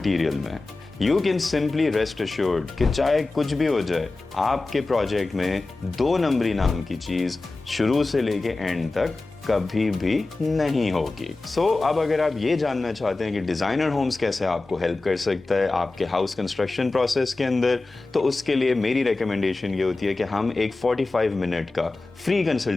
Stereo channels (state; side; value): quieter; right; 3.3 dB